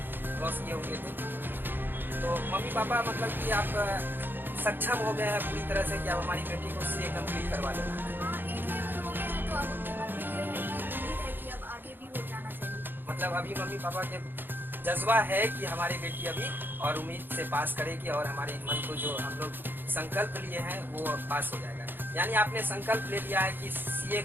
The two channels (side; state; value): left; late; 0.096 ms